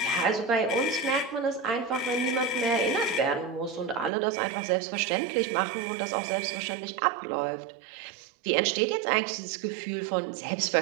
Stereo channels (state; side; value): drops out; left; at 4.1 s